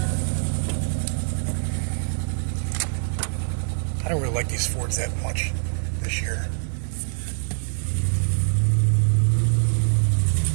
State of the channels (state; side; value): silent; left; 62 dB below the other